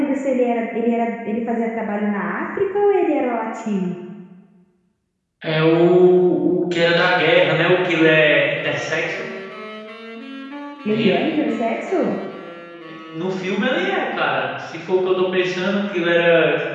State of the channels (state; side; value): identical; both; correlation 1.00